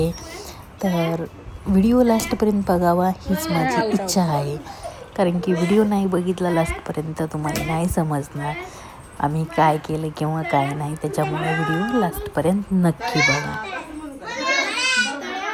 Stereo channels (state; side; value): identical; both; correlation 1.00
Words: तर व्हिडिओ लास्टपर्यंत बघावा हीच माझी इच्छा आहे, कारण की व्हिडिओ नाही बघितला लास्टपर्यंत तुम्हाला नाही समजणार आम्ही काय केलं किंवा काय नाही. त्याच्यामुळे व्हिडिओ लास्टपर्यंत नक्की बघा.